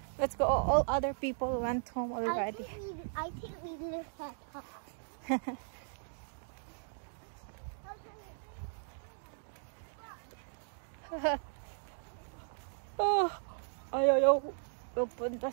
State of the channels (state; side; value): silent; left; digital silence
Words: Let's go. All other people went home already. I think we live at home. Oh, ayaw pupunta